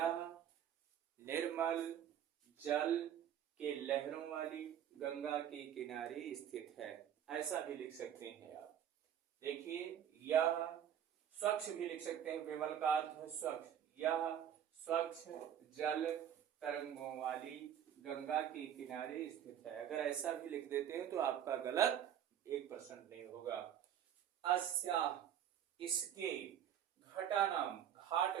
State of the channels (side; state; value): left; quieter; 9.8 dB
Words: निर्मल जल के लहरों वाली गंगा के किनारे स्थित है। ऐसा भी लिख सकते हैं आप। देखिए यह स्वच्छ भी लिख सकते हैं, विमल का अर्थ है स्वच्छ। यह स्वच्छ जल तरंगों वाली गंगा के किनारे स्थित है। अगर ऐसा भी लिख देते हैं तो आपका गलत 1% नहीं होगा। अस्या, इसके, घटानाम, घाट